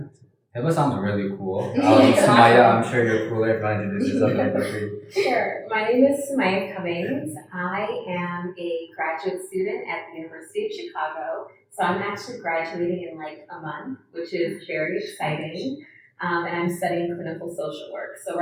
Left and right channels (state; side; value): identical; both; correlation 1.00